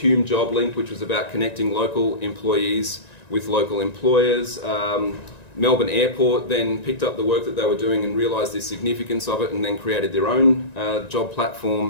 Job Link, which was about connecting local employees with local employers. Melbourne Airport then picked up the work that they were doing and realised the significance of it and then created their own job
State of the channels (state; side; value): late; right; 1.9 ms